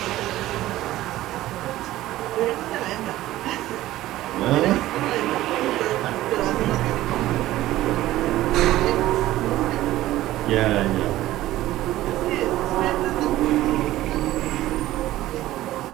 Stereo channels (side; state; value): left; quieter; 15.5 dB